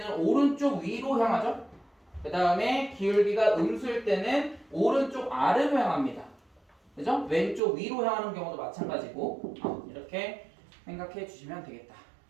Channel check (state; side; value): drops out; left; at 7.6 s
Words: 오른쪽 위로 향하죠. 그 다음에 기울기가 음수일 때는 오른쪽 아래로 향합니다. 그죠? 왼쪽 위로 향하는 경우도 마찬가지고 이렇게 생각해 주시면 되겠다